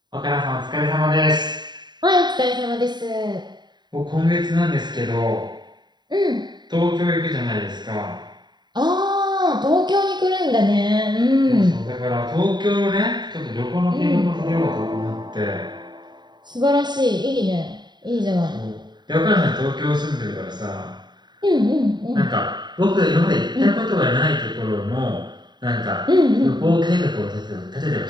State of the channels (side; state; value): left; late; 0.21 ms